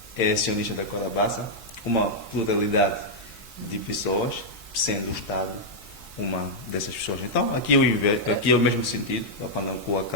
é acionista da Câmara Bassa, uma pluralidade de pessoas, sendo o Estado uma dessas pessoas. Então, aqui é o mesmo sentido, a Pandacua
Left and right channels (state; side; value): normal; both; correlation -0.05